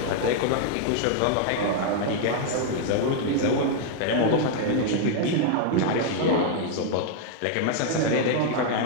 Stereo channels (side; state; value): both; different; correlation 0.00